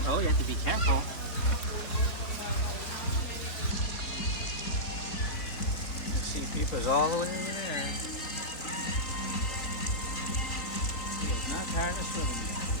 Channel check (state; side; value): late; right; 3.9 ms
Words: Oh, you have to be careful. You see Peepa's all the way over there. He is not tired of swimming.